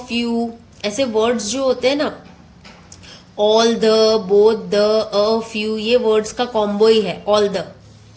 फ्यू ऐसे वर्ड्स जो होते हैं ना, all the, both the, a few, ये वर्ड्स का कॉम्बो ही है. All the,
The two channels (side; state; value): both; identical; correlation 1.00